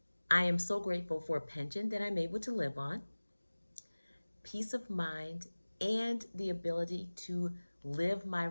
I am so grateful for a pension that I'm able to live on, peace of mind, and the ability to live my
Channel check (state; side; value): inverted; both; correlation -1.00